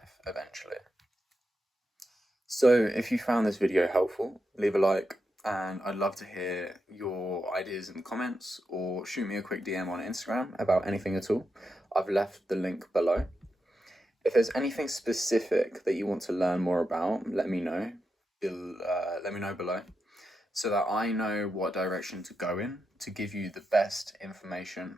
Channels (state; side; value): normal; both; correlation 0.87